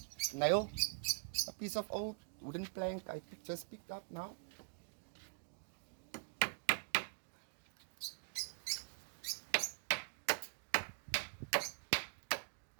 Nail, a piece of old wooden plank I just picked up now.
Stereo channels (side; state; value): left; silent; digital silence